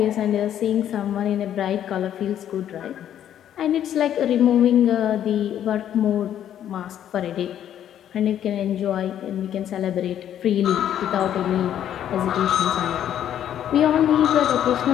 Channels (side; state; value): right; quieter; 10.5 dB